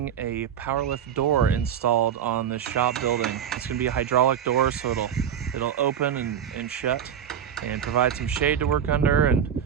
a Powerlift door installed on the shop building. It's going to be a hydraulic door, so it'll open and shut and provide some shade to work under and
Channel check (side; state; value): left; quieter; 8.8 dB